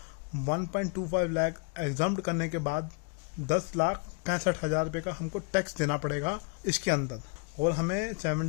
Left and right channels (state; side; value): quieter; right; 35.4 dB